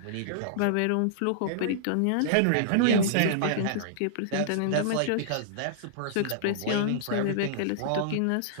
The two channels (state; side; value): different; both; correlation -0.02